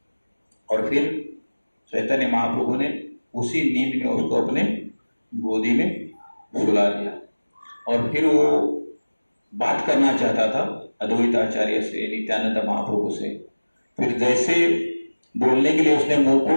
और फिर चैतन्य महाप्रभु ने उसी नींद में उसको अपने गोदी में सुला दिया और फिर वो बात करना चाहता था अद्वैत आचार्य से, नित्यानंद महाप्रभु से। फिर जैसे बोलने के लिए उसने मुंह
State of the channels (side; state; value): both; inverted; correlation -1.00